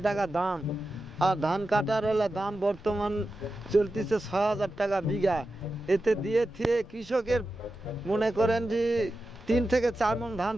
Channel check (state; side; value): noise; left; rumble, 22 dB below the sound